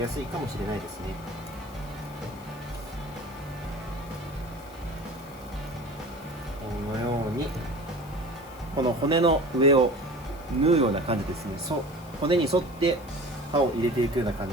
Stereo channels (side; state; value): left; noise; hiss, 23 dB below the sound